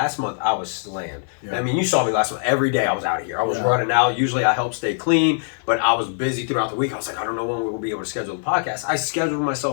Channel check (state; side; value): silent; right; digital silence